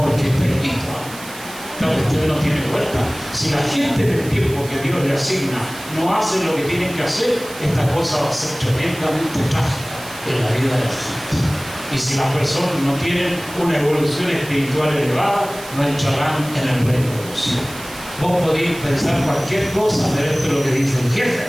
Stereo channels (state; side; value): noise; right; hiss, 15 dB below the sound